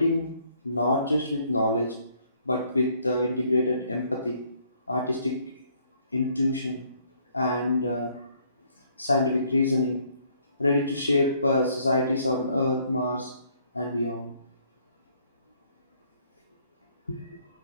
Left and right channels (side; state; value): both; inverted; correlation -0.65